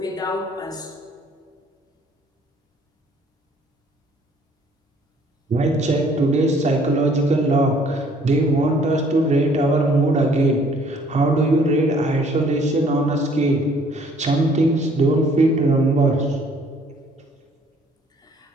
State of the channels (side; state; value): both; normal; correlation 0.59